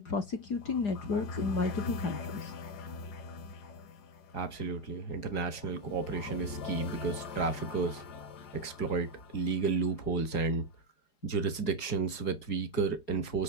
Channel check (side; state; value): right; late; 4.8 ms